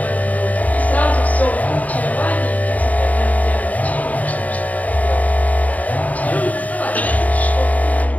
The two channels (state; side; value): late; right; 0.073 ms